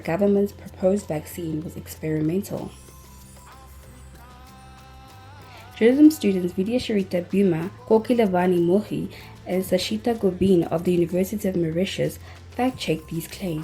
proposed vaccine was experimental. Journalism students Vidya Sharita Buma, Kokilevani Mohi, and Sashita Gobin of the University of Mauritius fact-checked these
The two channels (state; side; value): identical; both; correlation 1.00